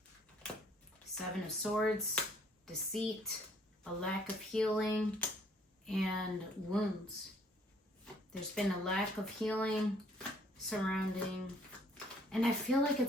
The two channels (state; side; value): normal; both; correlation 0.62